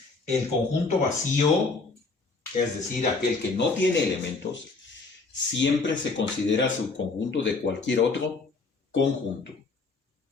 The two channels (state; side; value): quieter; right; 4.0 dB